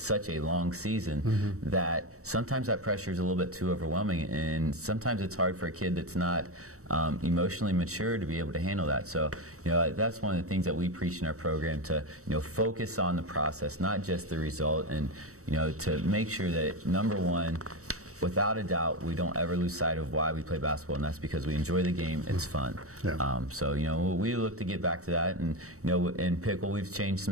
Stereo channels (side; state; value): left; late; 0.65 ms